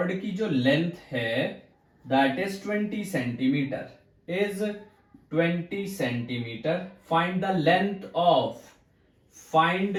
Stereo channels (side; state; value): both; identical; correlation 1.00